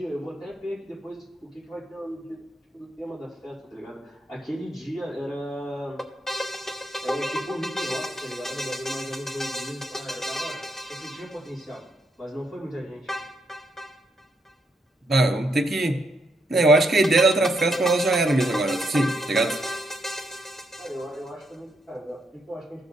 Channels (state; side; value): normal; both; correlation 0.78